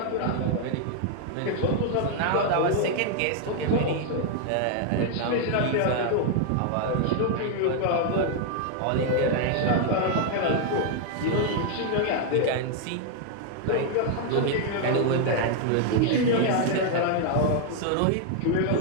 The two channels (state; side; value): different; both; correlation 0.00